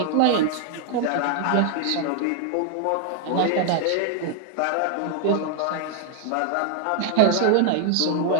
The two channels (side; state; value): both; different; correlation 0.00